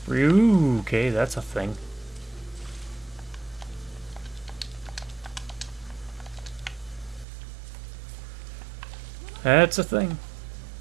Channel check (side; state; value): left; drops out; at 7.2 s